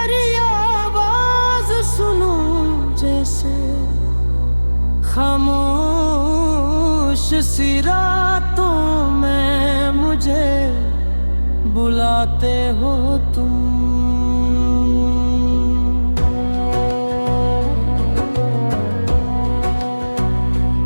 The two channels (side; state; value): both; inverted; correlation -1.00